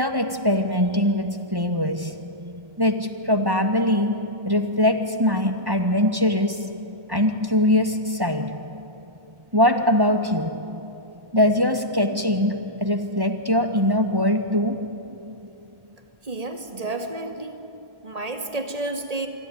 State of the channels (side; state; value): left; late; 1.1 ms